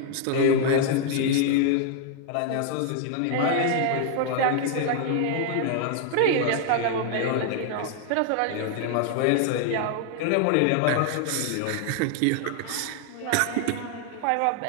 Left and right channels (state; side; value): different; both; correlation 0.00